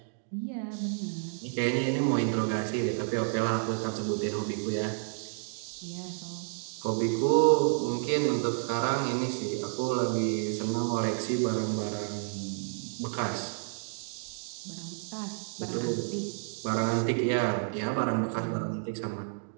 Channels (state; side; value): silent; left; digital silence